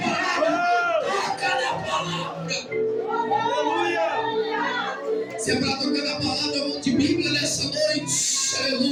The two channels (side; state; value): both; identical; correlation 1.00